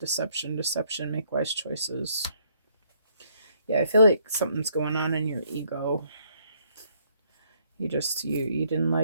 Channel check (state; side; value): inverted; both; correlation -0.68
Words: deception, make wise choices. Yeah, I feel like something's going on in your ego. You didn't